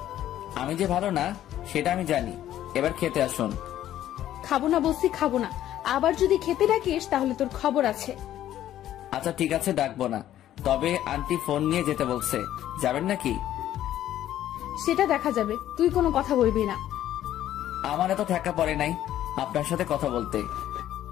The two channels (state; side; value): quieter; right; 12.3 dB